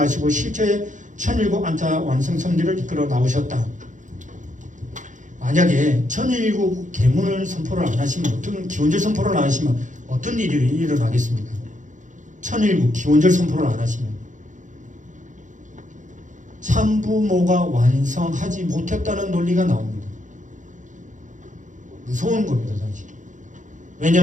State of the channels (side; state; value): left; late; 0.36 ms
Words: 실체의 천일국 안타 완성 섭리를 이끌어 나오셨다. 만약에 천일국 계문을 선포를 안 하시면, 어떤 기원절 선포를 안 하시면 어떤 일이 일어나겠습니까? 천일국 기원절 선포를 안 하시면 참부모가 완성하지 못했다는 논리가 나옵니다. 무서운 겁니다, 사실.